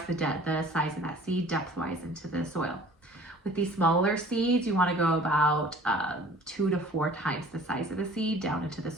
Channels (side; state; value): both; normal; correlation 0.49